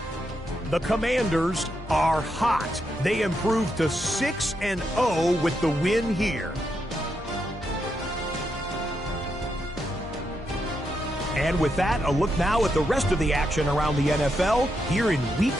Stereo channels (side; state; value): both; normal; correlation 0.82